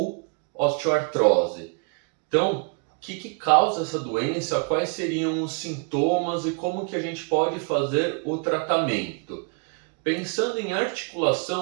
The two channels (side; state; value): left; quieter; 36.9 dB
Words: osteoartrose. Então, o que causa essa doença, quais seriam os sintomas e como que a gente pode fazer o tratamento? Pensando em